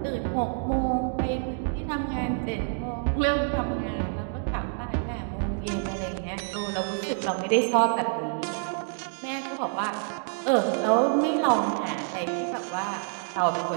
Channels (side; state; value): left; silent; 60 dB below the other